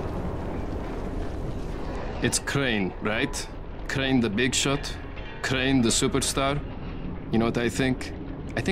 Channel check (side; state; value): both; identical; correlation 1.00